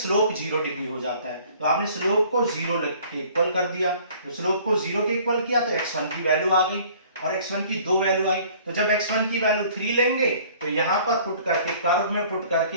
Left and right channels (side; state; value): both; inverted; correlation -0.53